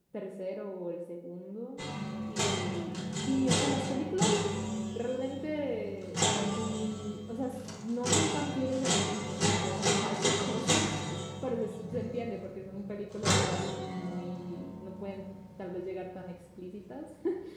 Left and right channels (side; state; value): both; identical; correlation 1.00